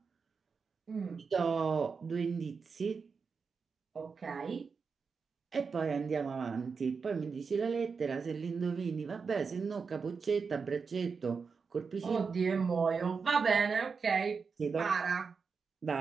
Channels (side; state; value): left; quieter; 5.3 dB